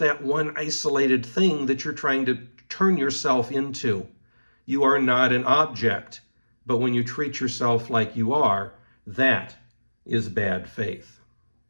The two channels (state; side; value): inverted; both; correlation -1.00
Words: one isolated thing that you're trying to turn yourself into. You are not an object. But when you treat yourself like you are, that is bad faith.